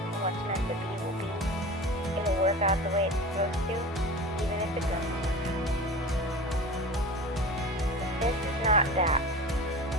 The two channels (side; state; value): both; normal; correlation 0.33